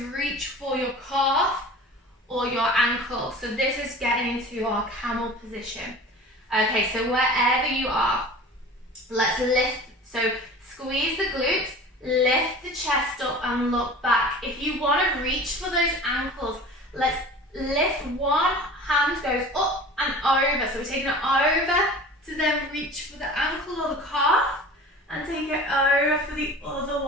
reach for your calf or your ankle. So this is getting into our camel position. Okay, so wherever you are, let's lift. So squeeze the glutes, lift the chest up and look back. If you want to reach for those ankles, let's lift. One hand goes up and over. So we're taking it over to then reach for the ankle or the calf and take it over for the other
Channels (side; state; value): both; normal; correlation 0.40